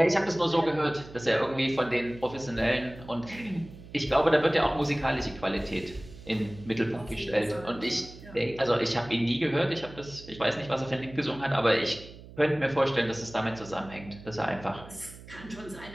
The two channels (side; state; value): right; noise; hum, 17 dB below the sound